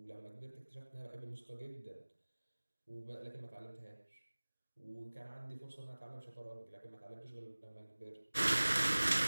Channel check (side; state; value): both; inverted; correlation -1.00